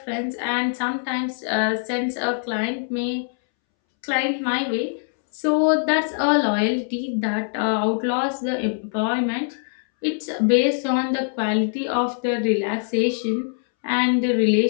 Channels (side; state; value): right; silent; 63 dB below the other